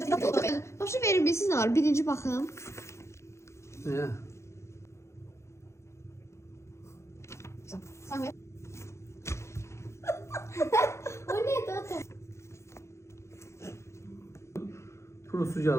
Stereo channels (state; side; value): late; right; 0.13 ms